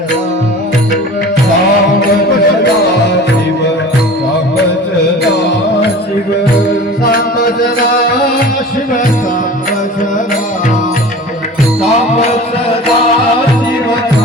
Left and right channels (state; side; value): normal; both; correlation 0.39